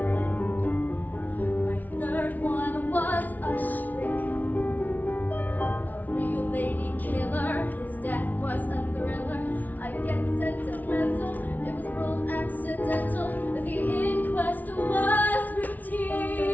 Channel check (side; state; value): right; late; 0.078 ms